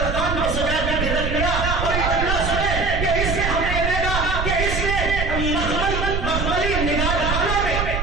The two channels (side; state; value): right; noise; rumble, 2 dB below the sound